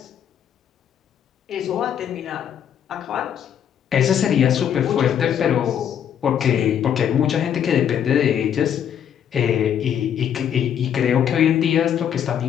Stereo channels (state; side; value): quieter; right; 9.1 dB